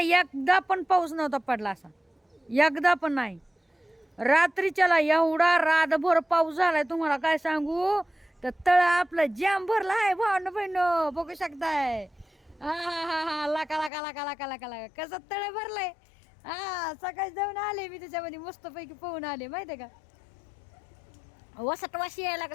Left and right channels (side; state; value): right; drops out; at 13.9 s